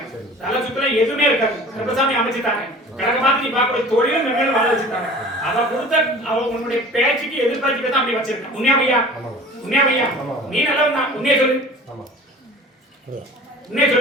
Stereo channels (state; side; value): normal; both; correlation 0.43